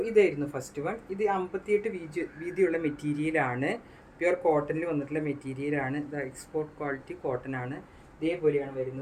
ഇതായിരുന്നു ഫസ്റ്റ് വൺ. ഇത് 58 വീതിയുള്ള മെറ്റീരിയലാണ്. പ്യുവർ കോട്ടണിൽ വന്നിട്ടുള്ള മെറ്റീരിയലാണ്. ഇത് എക്സ്പോർട്ട് ക്വാളിറ്റി കോട്ടൺ ആണ്. ഇതേപോലെയാണ്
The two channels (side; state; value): both; identical; correlation 1.00